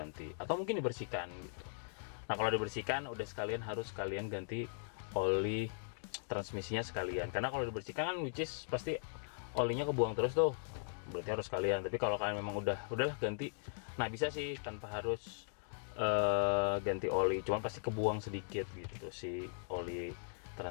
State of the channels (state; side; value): silent; right; digital silence